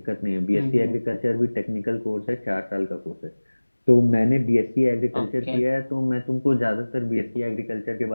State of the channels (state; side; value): inverted; both; correlation -1.00